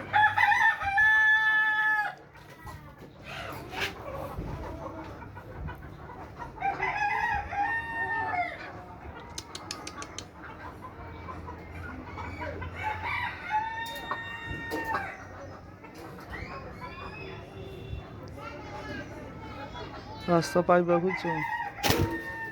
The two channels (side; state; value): both; identical; correlation 1.00